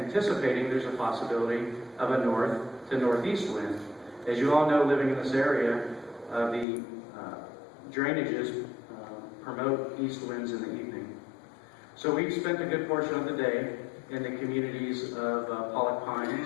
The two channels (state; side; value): drops out; right; at 6.7 s